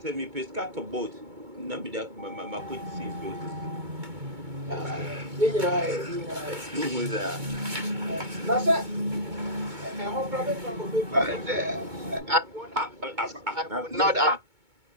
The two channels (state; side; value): late; left; 2.2 ms